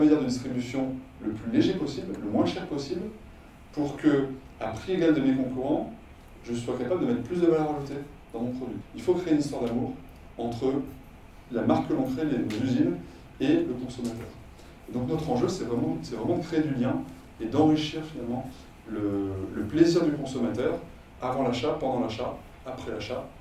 de distribution le plus léger possible, le moins cher possible, pour que, à prix égal de mes concurrents, je sois capable de mettre plus de valeur ajoutée dans mon produit. Il faut créer une histoire d'amour entre la marque que l'on crée, les usines, et le consommateur. Et donc notre enjeu, c'est vraiment de créer du lien et d'enrichir finalement le plaisir du consommateur avant l'achat, pendant l'achat, après l'achat,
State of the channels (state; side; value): identical; both; correlation 1.00